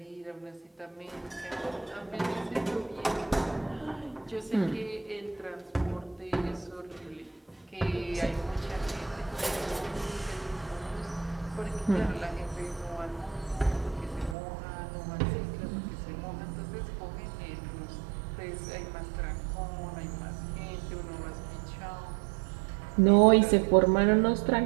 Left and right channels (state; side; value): drops out; left; at 14.4 s